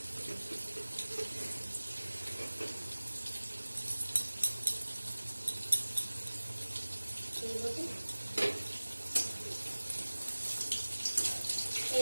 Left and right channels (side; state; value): both; inverted; correlation -1.00